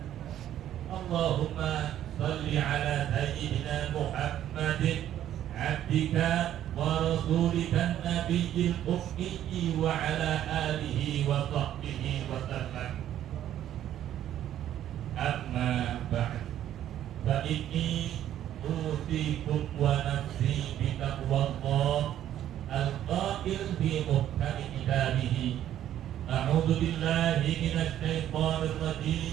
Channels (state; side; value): quieter; left; 11.5 dB